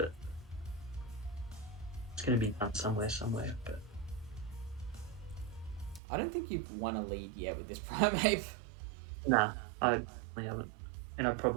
it's going to be done somewhere. But I don't think you've won a lead yet with this Primeape. nah, I definitely haven't, and I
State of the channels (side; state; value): left; drops out; at 6.0 s